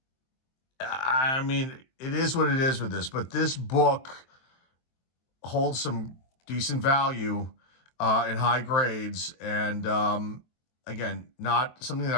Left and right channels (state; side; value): late; right; 23 ms